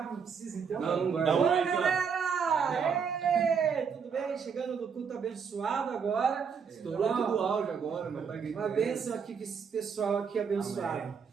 não precisa então? Não vai. Dá um Oi, oi aqui, ó. galera! Ê, tudo bem? Chegando no culto abençoado agora. Estourou tudo o áudio agora, mas tá gritando. Uma bênção aqui com esse pessoal aqui abençoado.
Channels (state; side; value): quieter; left; 6.4 dB